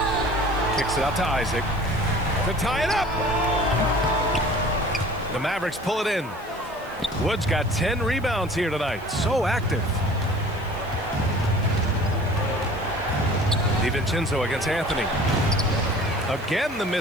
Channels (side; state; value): right; noise; hiss, 25 dB below the sound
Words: Kicks it out to Isaac to tie it up. The Mavericks pull it in. Wood's got 10 rebounds here tonight. So active. DiVincenzo against Anthony. Again, the